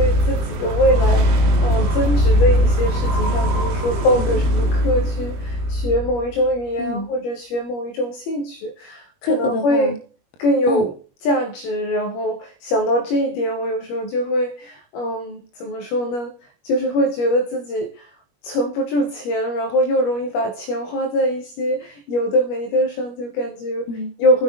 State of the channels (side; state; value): right; late; 21 ms